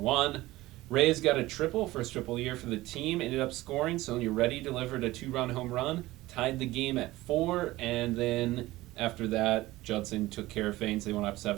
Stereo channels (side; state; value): left; quieter; 18.1 dB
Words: Reyes got a triple, first triple year for the team, ended up scoring. Sonia Reddy delivered a 2-run home run, tied the game at 4, and then after that, Judson took care of things. They went up